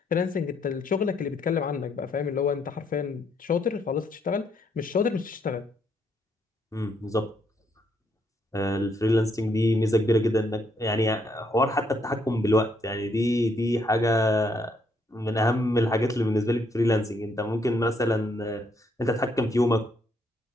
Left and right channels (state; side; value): normal; both; correlation 0.73